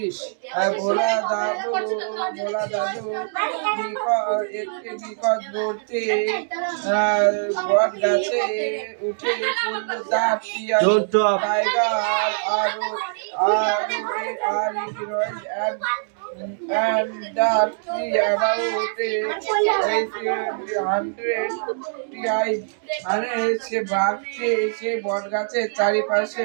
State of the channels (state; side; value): silent; left; digital silence